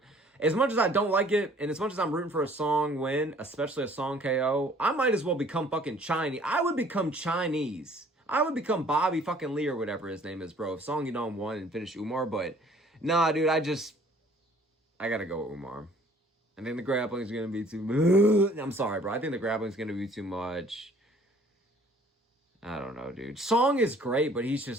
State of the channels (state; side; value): normal; both; correlation 0.56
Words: As much as I don't like it, and as much as I'm rooting for a Song win, especially a Song KO, I might as well become fucking Chinese. I would become Chinese. I would become Bobby fucking Lee or whatever his name is, bro. If Song Yadong won and finished Umar, but nah, dude, I gotta go with Umar. I think the grappling is gonna be too much. I'm sorry, bro. I think the grappling is gonna be too much. I don't know, dude. Song is great, but he's